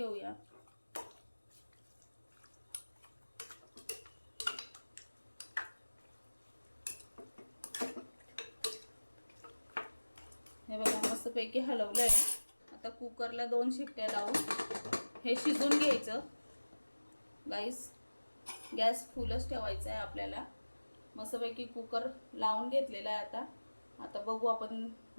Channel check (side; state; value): both; inverted; correlation -1.00